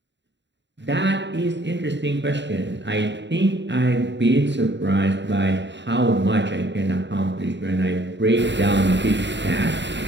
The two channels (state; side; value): late; left; 0.52 ms